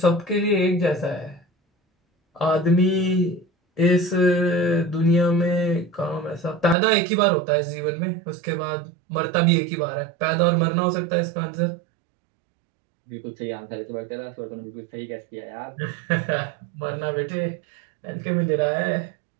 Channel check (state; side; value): drops out; left; at 6.8 s